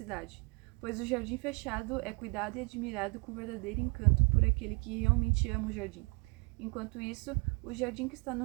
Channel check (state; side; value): quieter; left; 31.1 dB